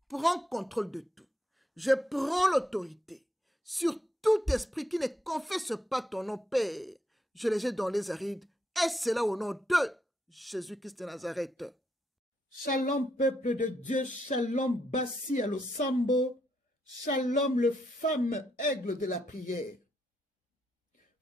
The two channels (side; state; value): both; normal; correlation 0.78